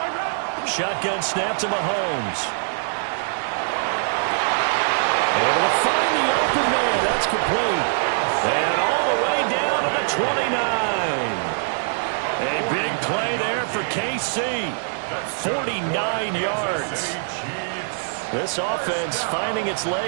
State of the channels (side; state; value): left; silent; digital silence